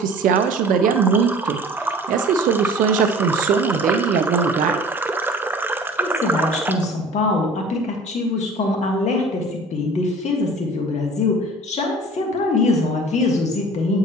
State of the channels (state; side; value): normal; both; correlation 0.44